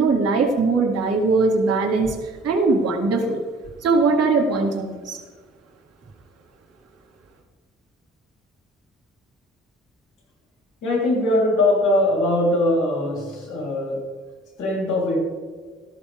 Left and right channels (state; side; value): normal; both; correlation 0.49